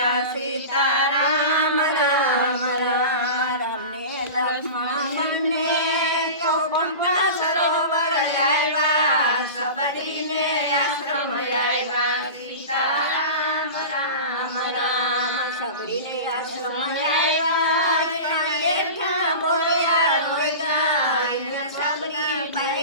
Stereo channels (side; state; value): both; inverted; correlation -0.31